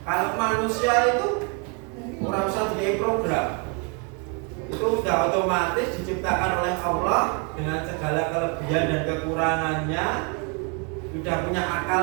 Kalau manusia itu kurang usah di program. Itu sudah otomatis diciptakan oleh Allah dengan segala kelebihan dan kekurangannya. Sudah punya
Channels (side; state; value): left; quieter; 35.0 dB